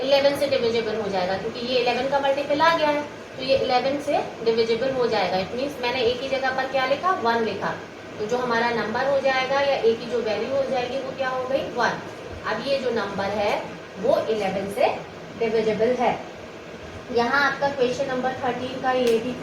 11 से डिविजिबल हो जाएगा, क्योंकि ये 11 का मल्टीपल आ गया है, तो ये 11 से डिविजिबल हो जाएगा। इट मीन्स मैंने a की जगह पर क्या लिखा 1 लिखा, तो जो हमारा नंबर हो जाएगा या a की जो वैल्यू हो जाएगी वो क्या हो गई 1। अब ये जो नंबर है वो 11 से डिविजिबल है। यहाँ आपका क्वेश्चन नंबर 13 का ये भी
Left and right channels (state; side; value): identical; both; correlation 1.00